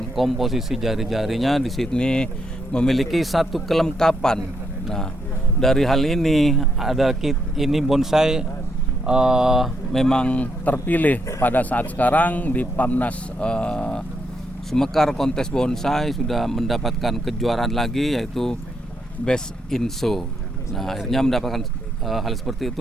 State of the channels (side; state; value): both; normal; correlation 0.78